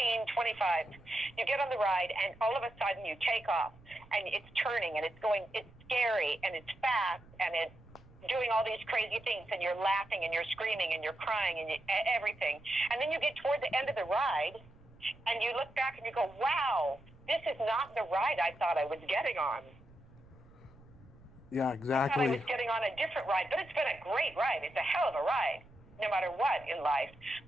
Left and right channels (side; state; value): right; noise; rumble, 24 dB below the sound